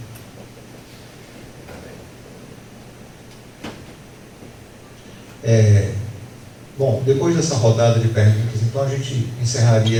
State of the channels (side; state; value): both; identical; correlation 1.00